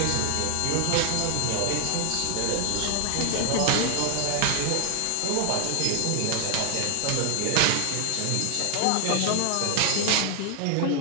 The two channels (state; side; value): different; both; correlation 0.00